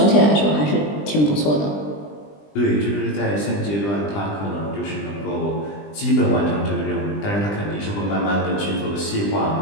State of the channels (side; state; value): right; late; 20 ms